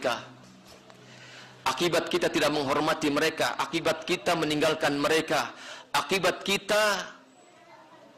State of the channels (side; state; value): both; identical; correlation 1.00